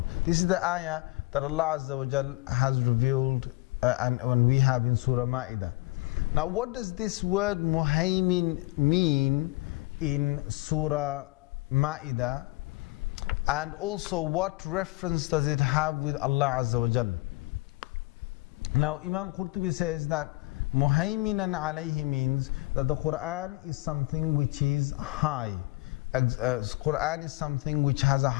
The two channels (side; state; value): right; quieter; 22.4 dB